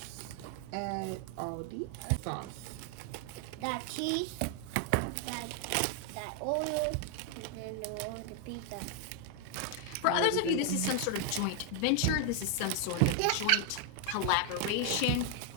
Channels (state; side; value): different; both; correlation 0.00